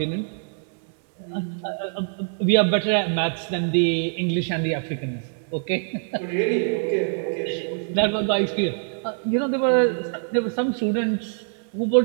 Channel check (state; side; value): silent; left; digital silence